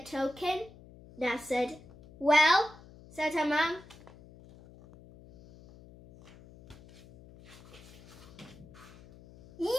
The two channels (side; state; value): left; noise; hum, 22 dB below the sound